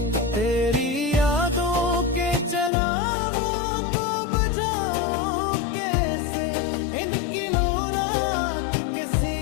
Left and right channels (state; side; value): drops out; right; at 2.7 s